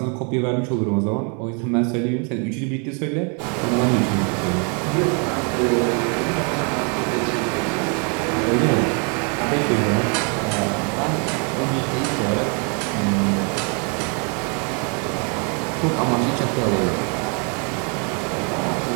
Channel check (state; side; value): quieter; left; 36.9 dB